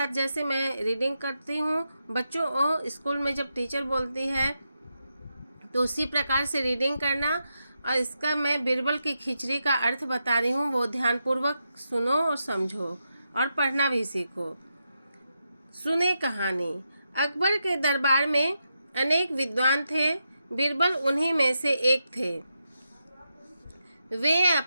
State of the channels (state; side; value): inverted; both; correlation -0.86